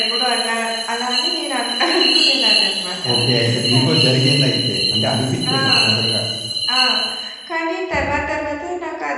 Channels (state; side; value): identical; both; correlation 1.00